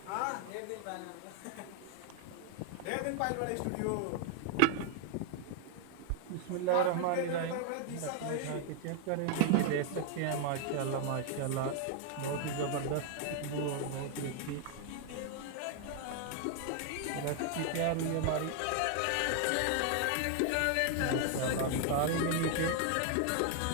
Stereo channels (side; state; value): both; different; correlation 0.00